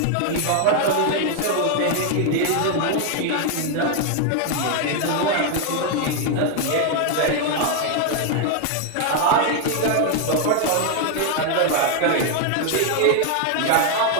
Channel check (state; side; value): different; both; correlation 0.01